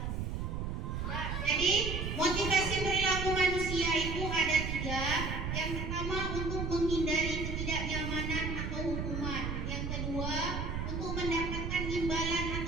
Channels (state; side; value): noise; right; rumble, 3 dB below the sound